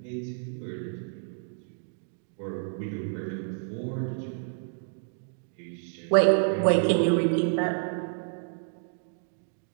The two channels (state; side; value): silent; left; digital silence